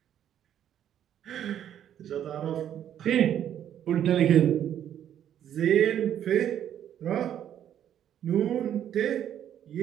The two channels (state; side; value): quieter; left; 10.2 dB